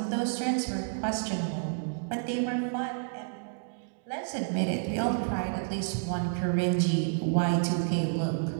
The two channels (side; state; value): left; silent; digital silence